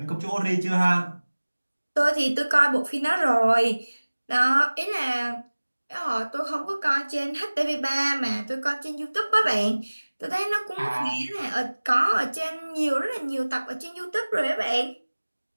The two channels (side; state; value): both; inverted; correlation -1.00